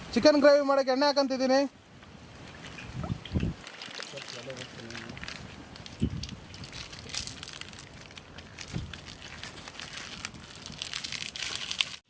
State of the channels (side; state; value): both; identical; correlation 1.00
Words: ಚಿಕನ್ ಗ್ರೇವಿ ಮಾಡೋಕ್ಕೆ ಎಣ್ಣೆ ಹಾಕಂತಿದ್ದೀನಿ.